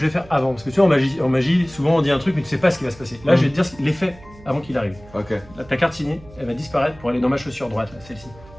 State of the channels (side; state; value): right; noise; hum, 22 dB below the sound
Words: vais faire avant. Parce que tu vois, en magie, souvent on dit un truc, mais tu sais pas ce qui va se passer. Là, je vais te dire l'effet avant qu'il arrive. Ok. Là, ta carte signée, elle va disparaître pour aller dans ma chaussure droite, là, celle-ci.